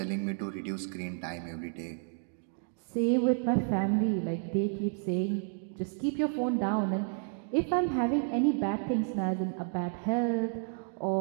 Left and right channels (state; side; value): silent; left; 57 dB below the other